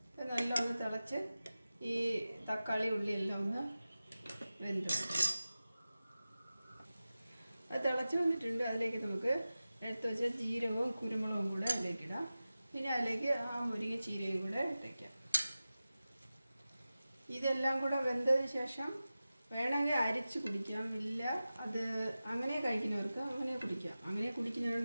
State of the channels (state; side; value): inverted; both; correlation -0.95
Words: നല്ല ഒന്ന് തിളച്ച് ഈ തക്കാളി ഉള്ളിയെല്ലാം ഒന്ന് വെന്ത് അത് തിളച്ച് വന്നിട്ടുണ്ട്. അതിലേക്ക് നമുക്ക് എടുത്ത് വെച്ച ജീരകവും കുരുമുളകും കൂടെ അതിലേക്കിടാം. പിന്നെ അതിലേക്ക് ആ മുരിങ്ങ ചീരയും കൂടെ ഇട്ടേക്കാം. ഇതെല്ലാം കൂടെ വെന്തതിന് ശേഷം വേണമെങ്കിൽ അരിച്ച് കുടിക്കാം. ഇല്ല അത് അങ്ങനെ കഴിക്കുന്നവർക്ക് അങ്ങനെ കുടിക്കാം. അങ്ങനെ